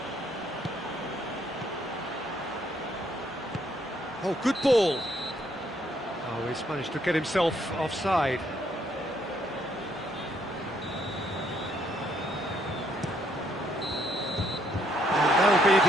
Oh, good ball. Oh, he's managed to get himself offside. And that'll be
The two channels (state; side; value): normal; both; correlation 0.70